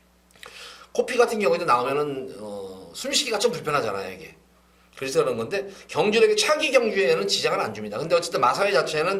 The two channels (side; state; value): both; identical; correlation 1.00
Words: 코피 같은 경우에도 나오면은 숨쉬기가 좀 불편하잖아요, 이게. 그래서 그런 건데 경주력이 차기 경주에는 지장을 안 줍니다. 근데 어쨌든 마사회